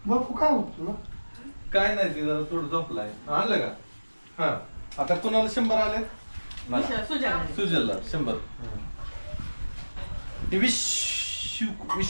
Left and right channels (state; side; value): inverted; both; correlation -1.00